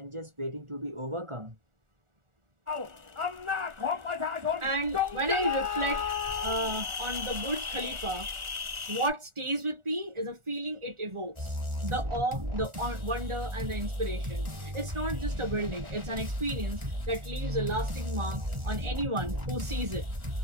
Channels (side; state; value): left; late; 1.4 ms